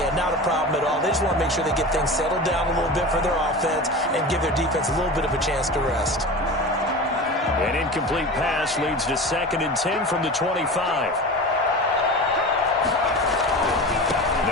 not a problem at all. They just want to make sure they get things settled down a little bit for their offense and give their defense a little bit of a chance to rest. An incomplete pass leads to 2nd and 10 from the 25.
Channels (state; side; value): normal; both; correlation 0.31